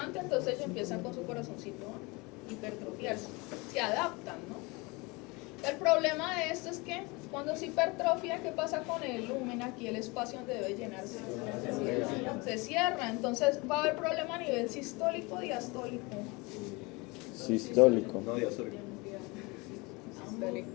entonces ellos empiezan con su corazoncito a hipertrofiarse, se adaptan, ¿no? El problema de esto es que cuando se hipertrofia, ¿qué pasa con el lumen? Aquí el espacio donde debe llenarse se cierra, entonces va a haber problema a nivel sistólico o diastólico. Sistólico. No, diastólico.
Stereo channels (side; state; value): right; quieter; 26.1 dB